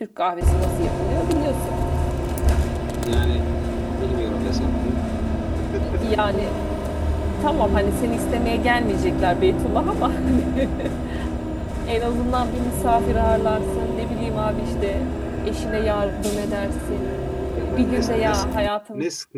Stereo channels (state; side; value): identical; both; correlation 1.00